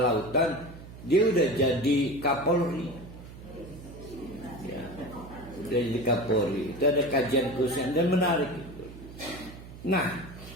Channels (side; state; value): right; noise; hum, 15 dB below the sound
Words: lautan dia udah jadi Kapolri, ya, udah jadi Kapolri. Itu ada kajian khusus dan menarik itu. Nah,